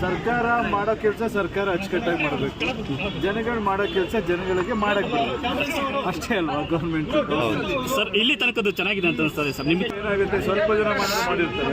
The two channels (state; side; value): identical; both; correlation 1.00